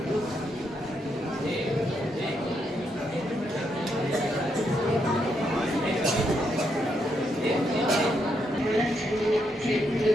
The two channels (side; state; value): both; normal; correlation 0.78